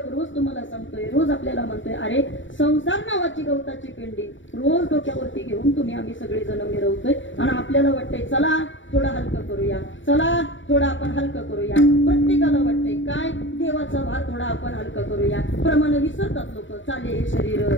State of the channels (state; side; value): late; right; 0.55 ms